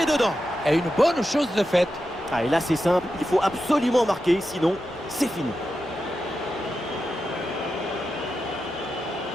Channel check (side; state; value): both; normal; correlation 0.89